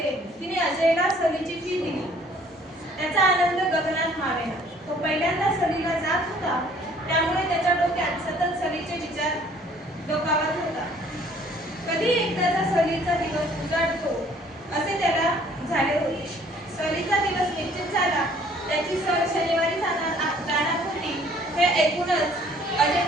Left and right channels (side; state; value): both; normal; correlation 0.58